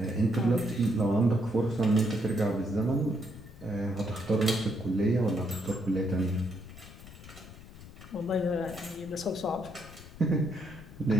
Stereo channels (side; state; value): left; noise; rumble, 17 dB below the sound